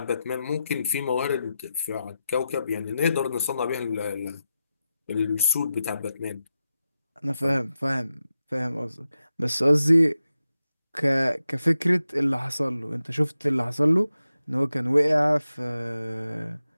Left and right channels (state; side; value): inverted; both; correlation -0.90